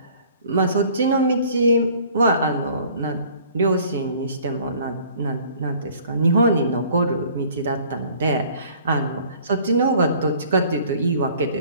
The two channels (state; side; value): inverted; both; correlation -0.53